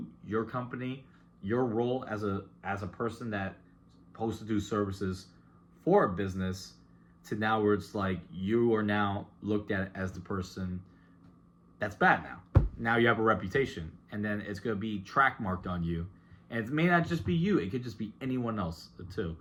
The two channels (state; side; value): identical; both; correlation 1.00